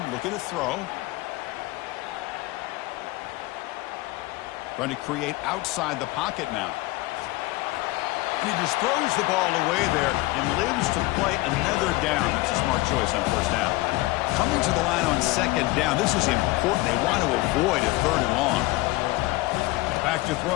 looking to throw. Trying to create outside the pocket now. And he just throws the ball away there and lives to play another down. That's a smart choice on 1st down. Coming to the line on 2nd down. This is important. They want to avoid a 3rd and long. Back to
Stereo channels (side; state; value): right; quieter; 20.4 dB